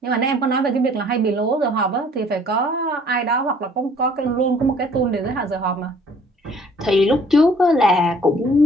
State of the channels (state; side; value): normal; both; correlation 0.56